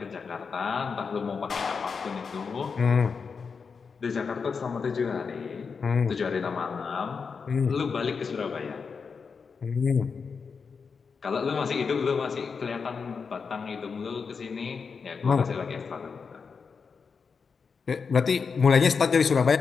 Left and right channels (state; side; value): quieter; right; 5.5 dB